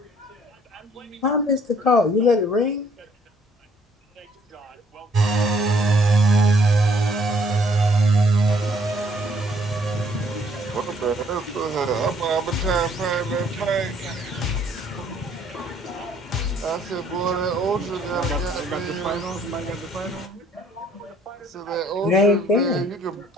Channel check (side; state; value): both; normal; correlation 0.62